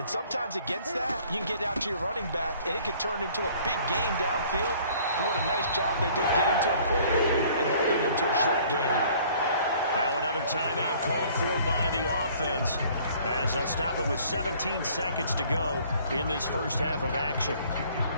sometimes against that, you can get out to your running back, and it can turn into a big game downfield. But what a nice job they did getting to him quickly and holding him to a short game. Now another timeout called for by the offense, as they'll stop it with 17 seconds to go in this first half of action.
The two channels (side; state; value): both; inverted; correlation -0.56